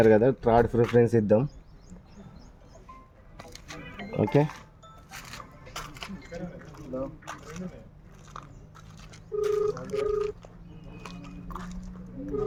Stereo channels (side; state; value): both; identical; correlation 1.00